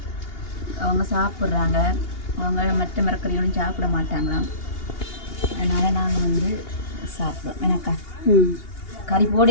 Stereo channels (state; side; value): late; right; 2.8 ms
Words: அவங்க சாப்பிட்றாங்க. அவங்க மற்ற மரக்கறியோடும் சாப்பிட மாட்டாங்களாம். அதனால் நாங்கள் வந்து சாப்பிடுவோம். எனக்கா கறி